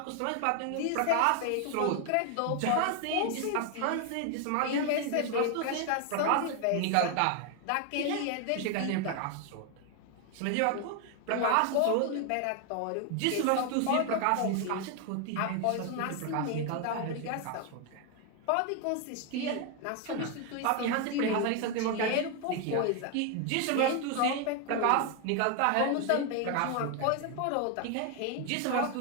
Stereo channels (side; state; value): both; different; correlation 0.01